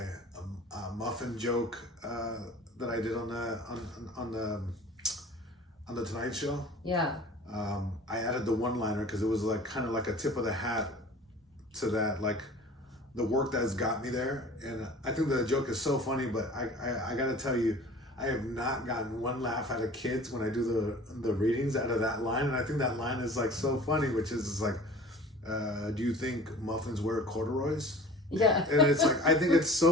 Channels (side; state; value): both; normal; correlation 0.44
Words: muffin joke that I did on the Tonight Show. Yeah. I added the one-liner because it was like kind of like a tip of the hat to that, like the work that's got me there. And I think the joke is so funny, but I got to tell you, I have not gotten one laugh out of kids when I do the readings out of that line. And I think that line is like so funny, which is like, do you think muffins wear corduroys? Yeah. And it's like, I think it's